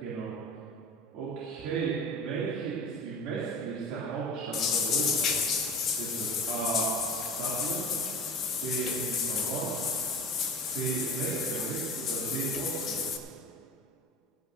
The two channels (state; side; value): normal; both; correlation 0.37